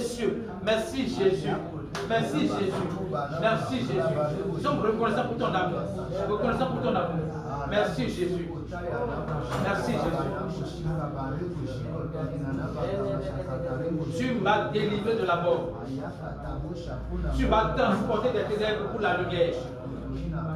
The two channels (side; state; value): both; identical; correlation 1.00